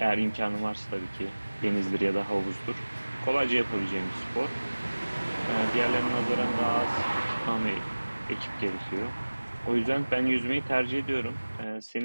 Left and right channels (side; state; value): both; inverted; correlation -1.00